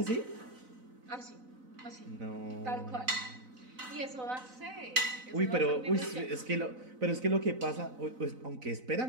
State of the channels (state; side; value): late; left; 4.0 ms